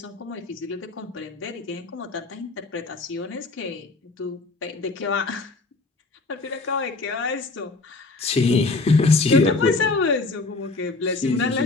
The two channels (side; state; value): right; quieter; 3.6 dB